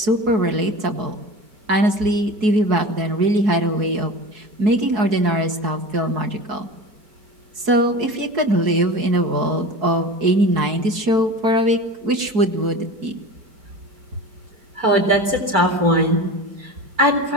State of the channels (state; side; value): late; left; 4.7 ms